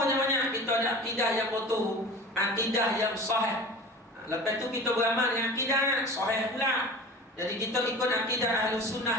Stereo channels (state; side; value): normal; both; correlation 0.37